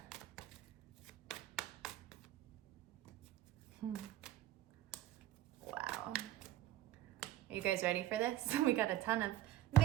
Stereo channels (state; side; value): quieter; left; 13.7 dB